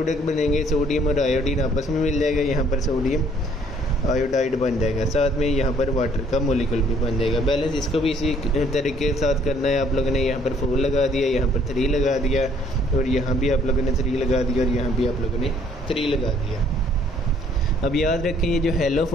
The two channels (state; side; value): normal; both; correlation 0.62